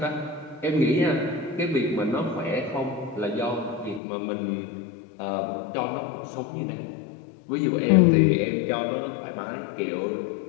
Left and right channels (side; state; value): right; drops out; at 4.0 s